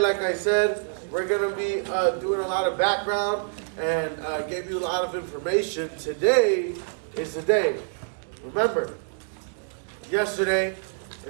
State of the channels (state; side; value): silent; left; digital silence